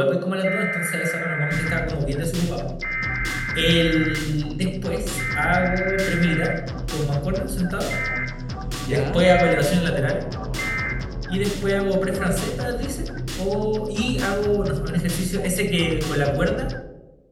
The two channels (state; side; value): identical; both; correlation 1.00